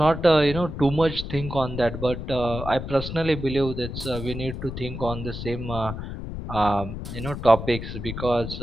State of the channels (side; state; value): left; noise; rumble, 7 dB below the sound